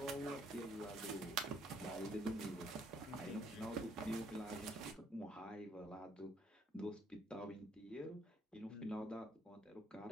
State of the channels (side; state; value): both; normal; correlation 0.67